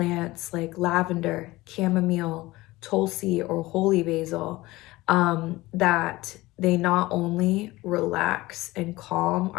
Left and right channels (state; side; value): quieter; right; 19.5 dB